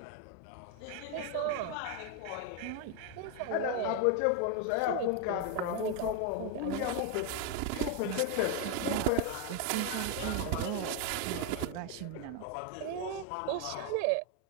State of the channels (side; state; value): both; different; correlation 0.01